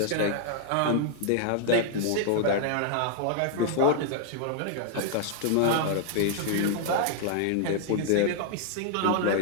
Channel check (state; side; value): different; both; correlation -0.01